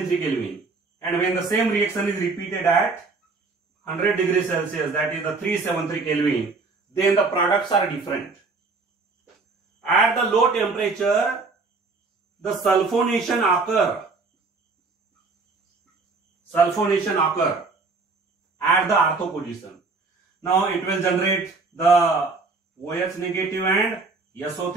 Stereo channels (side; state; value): left; quieter; 4.0 dB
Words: Kelvin, and when the same reaction is repeated at 100 degrees Celsius, that is the 373 Kelvin, then the products are different. At the low temperature, the sulfonation occur at the ortho position. Now it will generate the OH negative and